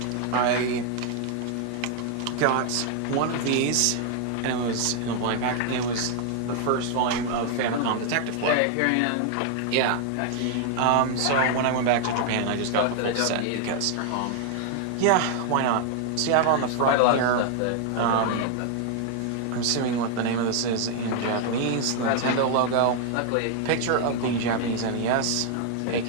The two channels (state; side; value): different; both; correlation 0.00